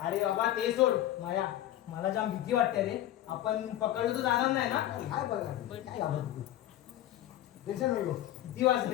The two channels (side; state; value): right; quieter; 13.2 dB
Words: बाबा ते सोड माया मला जाम भीती वाटते रे आपण पकडलो तर जाणार नाही ना काय बघा काय टेन्शन नको किती